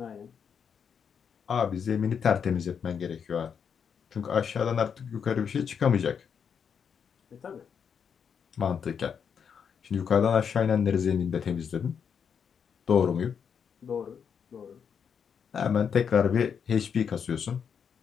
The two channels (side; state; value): right; quieter; 7.1 dB